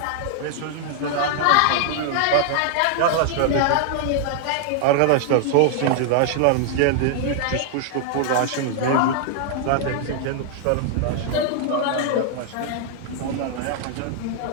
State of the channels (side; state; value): both; different; correlation 0.00